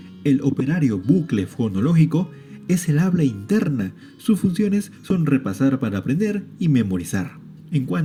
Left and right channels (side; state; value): both; identical; correlation 1.00